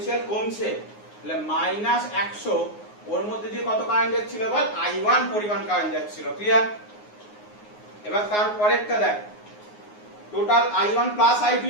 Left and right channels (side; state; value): right; late; 9.6 ms